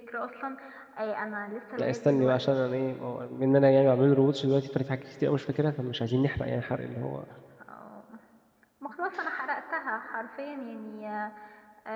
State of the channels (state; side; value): identical; both; correlation 1.00